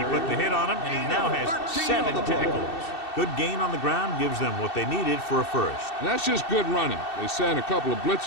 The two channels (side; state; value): right; late; 2.7 ms